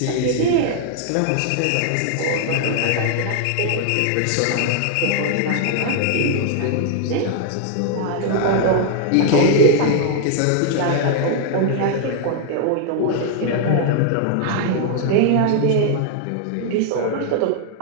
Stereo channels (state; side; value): different; both; correlation 0.00